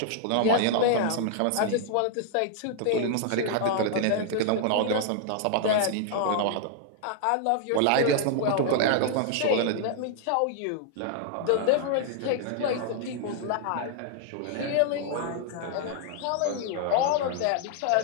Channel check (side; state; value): both; different; correlation -0.01